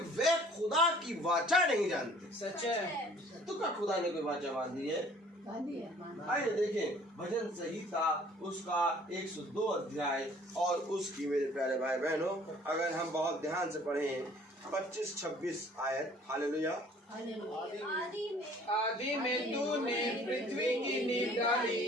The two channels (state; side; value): normal; both; correlation 0.54